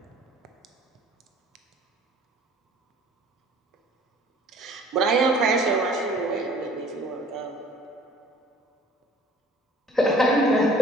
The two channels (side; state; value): both; normal; correlation 0.52